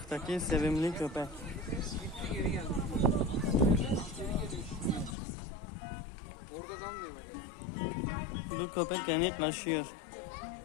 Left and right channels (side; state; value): right; drops out; at 5.2 s